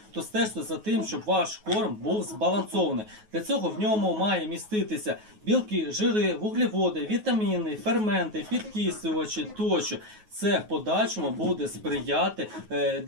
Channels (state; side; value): late; left; 9.4 ms